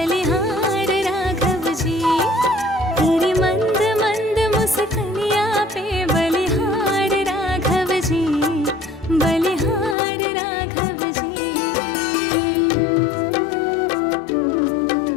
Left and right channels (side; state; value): right; drops out; at 10.0 s